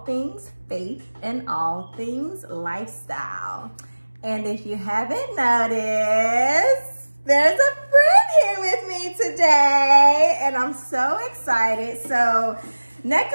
things faith and all things lifestyle. And if you haven't noticed, there's a friend here with me today, and I'm so excited. So Nneka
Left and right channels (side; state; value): both; inverted; correlation -1.00